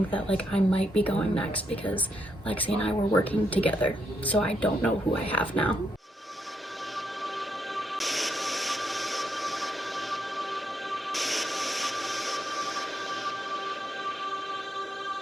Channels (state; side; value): normal; both; correlation 0.79